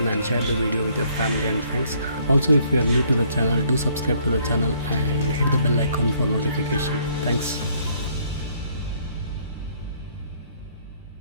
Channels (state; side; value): inverted; both; correlation -0.64